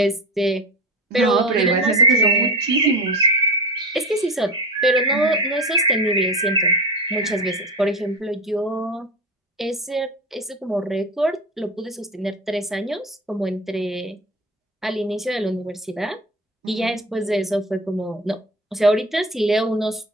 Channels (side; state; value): both; normal; correlation 0.27